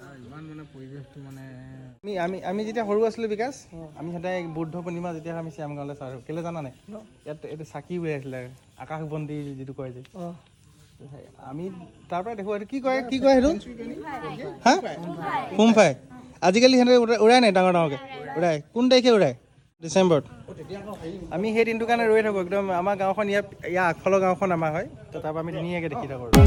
ইমান মানে পৰিৱেশটো মানে আমি যেতিয়া সৰু আছিলোঁ বিকাশ আমি সদায় বুদ্ধ পূৰ্ণিমা যেতিয়া আমি শ্যামগাঁৱলৈ চাওঁ কেলৈ জানা নাই ইয়াত এইটো চাকি উৰাই আছিলে আকাশবন্তি যিটো কয় যে আমি তাৰ পৰা দেখোঁ এইটো কি কয় সেইটো হা হোমফাই আজিকালি সিহঁতে উৰাই নাই ডাঙৰ ডাঙৰকৈ উৰাই কোন তাৰিখে উৰাই ডিচেম্বৰত আমি সেই দিনটোৰ কাৰণে ৰৈ থাকোঁ একদম আমাৰ গাঁওখন ইয়াৰ আগফালৰ গাঁওখন আমাৰ হয় তো তাৰ পৰা আমি ধুনীয়াকৈ দেখি থাকোঁ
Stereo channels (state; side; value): identical; both; correlation 1.00